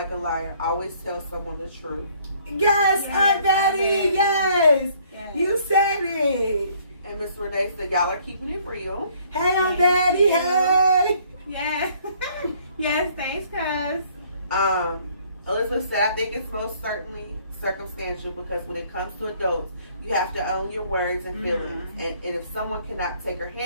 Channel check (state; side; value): inverted; both; correlation -0.61